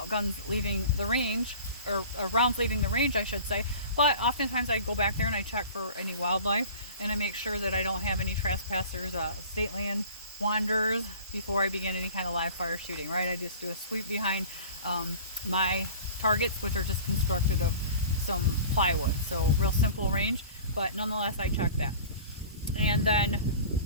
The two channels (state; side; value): inverted; both; correlation -0.42